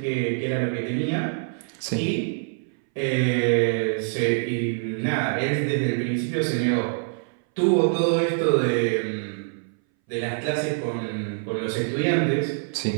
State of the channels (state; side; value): silent; left; 61 dB below the other